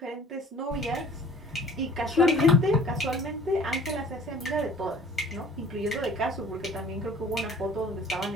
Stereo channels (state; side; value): normal; both; correlation 0.50